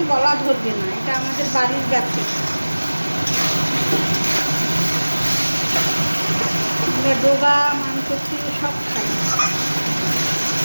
গলা ধরবে না, এটা আমাদের বাড়ির গাছে। আমরা ডোগা মানকচি সব খাই।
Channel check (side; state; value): both; inverted; correlation -1.00